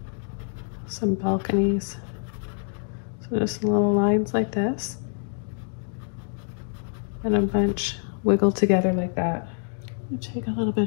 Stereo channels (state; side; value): silent; right; digital silence